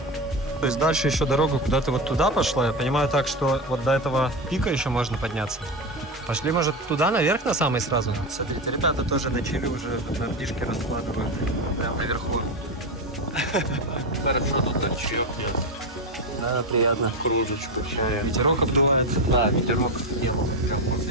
То есть дальше еще дорога куда-то вот туда пошла. Я понимаю так, что вот до этого пика еще можно подняться. Пошли, может, туда, наверх на самый сразу? Смотрите, ребята тоже начали уже на птишки раскладывают. Прямо наверху. Хорошо, тут чаек есть. Да, приятно. Кружечку чая. Ветерок обдувает. Да, ветерок делал. Прям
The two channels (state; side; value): normal; both; correlation 0.16